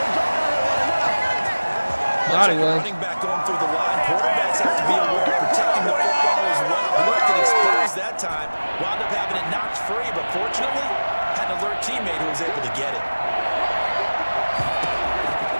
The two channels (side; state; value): both; inverted; correlation -1.00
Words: Thought he was. Running back going through the line. Quarterbacks have to be aware of protecting the football as well. He looked at exposed that time. Wound up having it knocked free, but fortunately, had an alert teammate who was able to get it.